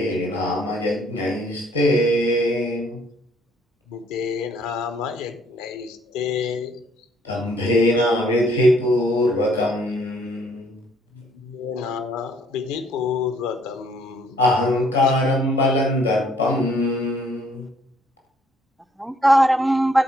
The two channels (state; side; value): normal; both; correlation 0.65